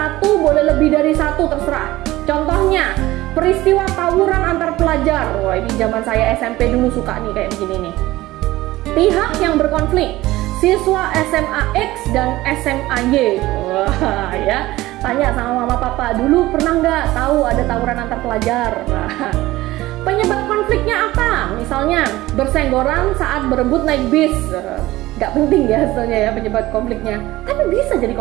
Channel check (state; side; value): quieter; left; 17.5 dB